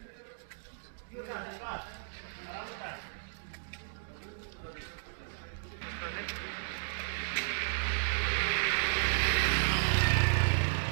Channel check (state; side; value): silent; left; digital silence